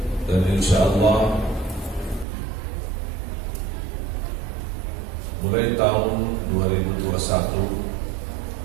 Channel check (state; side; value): drops out; left; at 2.2 s